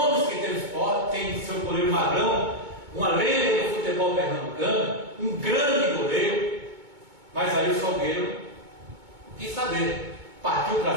que tem o Sport, tem seu goleiro Magrão, uma lenda do futebol pernambucano, um grande goleiro, mas aí o Salgueiro quis saber, partiu para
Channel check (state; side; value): late; left; 2.2 ms